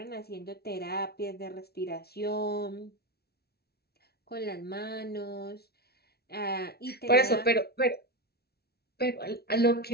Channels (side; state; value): right; late; 0.46 ms